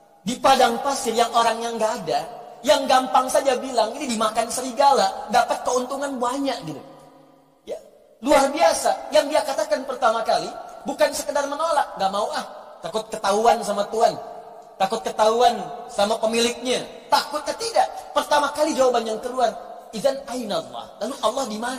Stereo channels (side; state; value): both; identical; correlation 1.00